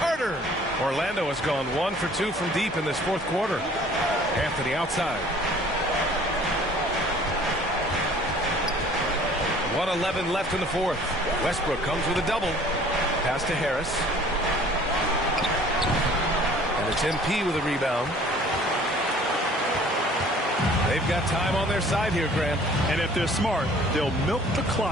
Orlando has gone 1 for 2 from deep in this fourth quarter. Anthony outside. 1:11 left in the fourth. Westbrook comes with a double. Pass to Harris. And it's MP with a rebound. They've got time on their side here, Grant. And if they're smart, they'll milk the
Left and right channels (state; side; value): normal; both; correlation 0.52